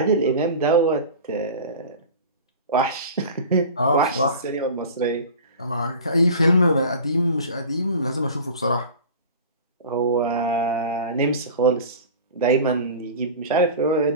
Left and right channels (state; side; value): inverted; both; correlation -0.36